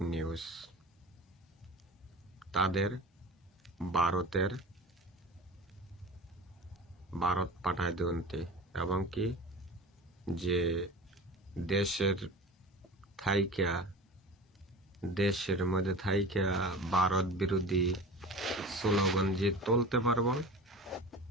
নিউজ। তাদের ভারত পাঠায় দিতে এবং কি যে দেশের মধ্যে থাইকা ভারত বিরোধী স্লোগান যে তুলতে পারবো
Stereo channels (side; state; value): both; normal; correlation 0.35